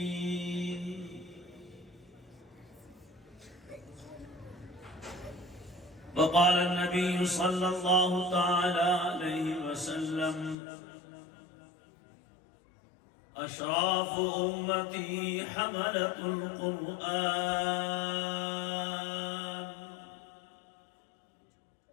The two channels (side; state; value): right; drops out; at 10.6 s